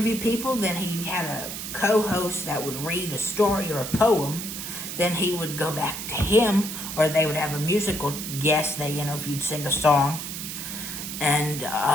people, then he had a co-host that would read a story or a poem, then he would go back to him, or they would have a musical guest they interviewed sing a song. And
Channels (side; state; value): right; noise; hiss, 7 dB below the sound